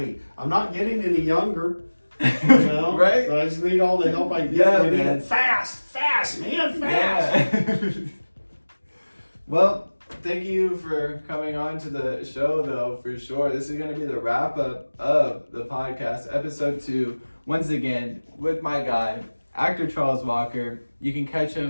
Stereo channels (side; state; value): both; inverted; correlation -1.00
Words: I'm not getting any younger. You know? Right? I just need all the help I can get. Yeah, I need man. it fast, man, fast. Yeah. Well, thank you for coming on to the show, though, for sure. This is going to be the wrap up of the podcast, episode 2. Once again, with my guy, actor Charles Walker. You can catch